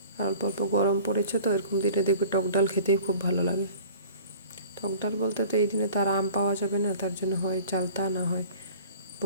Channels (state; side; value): inverted; both; correlation -0.45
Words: আর অল্প অল্প গরম পড়েছে, তো এরকম দিনে দেখবে টক ডাল খেতেই খুব ভালো লাগে। টক ডাল বলতে তো এই দিনে তো আর আম পাওয়া যাবে না, তার জন্য হয় চালতা, না হয়